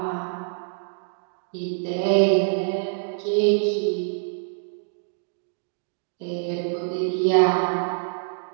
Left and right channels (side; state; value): left; silent; digital silence